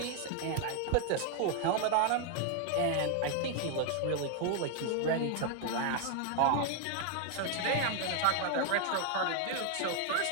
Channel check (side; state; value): both; different; correlation 0.00